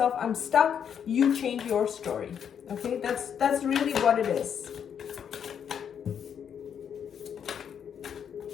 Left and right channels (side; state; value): right; quieter; 8.1 dB